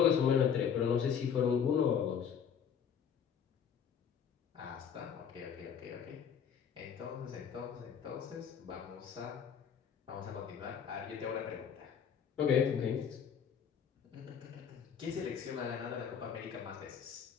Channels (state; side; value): quieter; right; 7.6 dB